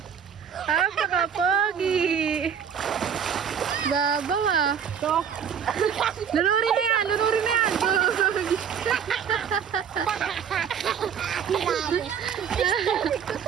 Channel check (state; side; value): quieter; left; 7.8 dB